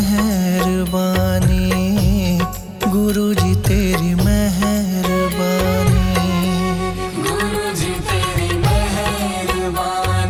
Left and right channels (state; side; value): identical; both; correlation 1.00